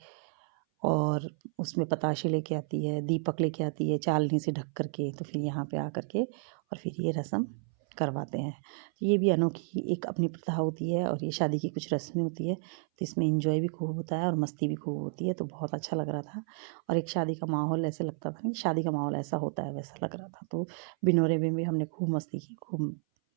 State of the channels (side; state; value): left; silent; 57 dB below the other